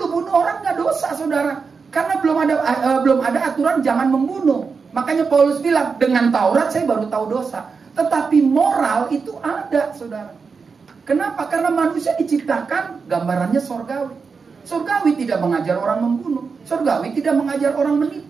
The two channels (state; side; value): quieter; left; 5.2 dB